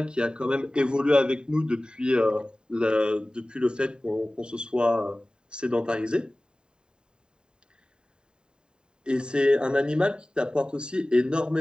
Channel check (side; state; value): left; late; 0.048 ms